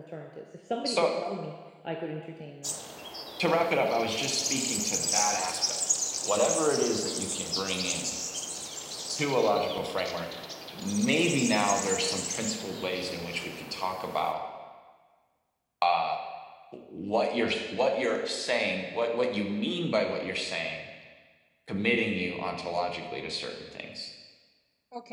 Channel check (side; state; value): both; identical; correlation 1.00